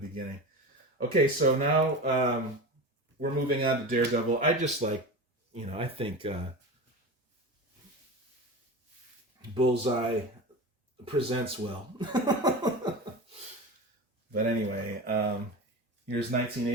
Okay, so now we're moving on to Daredevil. I just like, I think Bullseye presents well. But anyway, here's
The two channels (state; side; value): normal; both; correlation 0.28